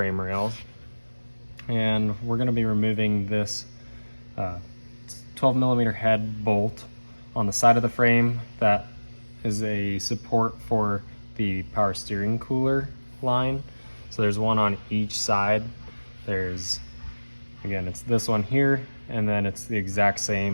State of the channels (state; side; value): inverted; both; correlation -1.00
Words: rails, and we're going to be removing this 12mm head bolt on the side of the frame that is a support for the power steering cooler line. So there's one on each side. There's, again, it's this one here, and then it's the exact